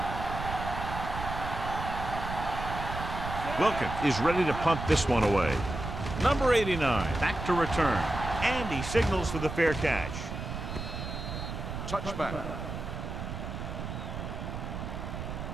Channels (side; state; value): right; noise; rumble, 6 dB below the sound